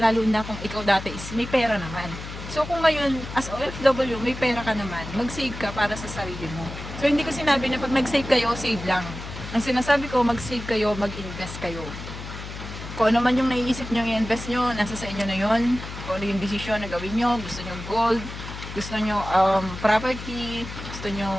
na kung ikaw dati is may pera naman. So kung ngayon, as OFW, may pera ka naman, mag-save ka para sa sarili mo. So hindi ko sinabi na pag nag-save kayo, save lang. Ang sinasabi ko, mag-save kayo, mag-invest kayo. Kung ano man yung naiisip nyo i-invest nyo, nasa sa inyo na yon. Kung ano yung desisyon na gawin nyo, gusto nyo gold, gusto nyo property, gusto nyo,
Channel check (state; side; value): noise; left; hum, 10 dB below the sound